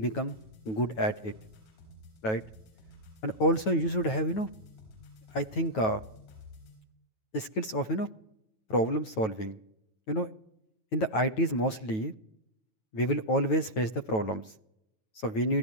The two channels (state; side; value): late; right; 9.2 ms